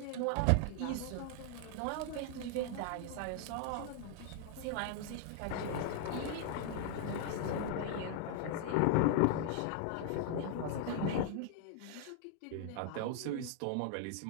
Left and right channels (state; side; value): different; both; correlation 0.00